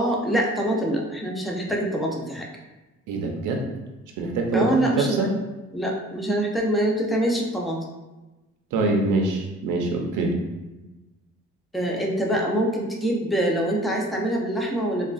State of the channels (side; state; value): both; normal; correlation 0.50